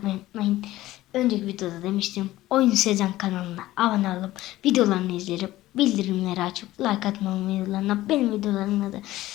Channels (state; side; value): quieter; right; 16.1 dB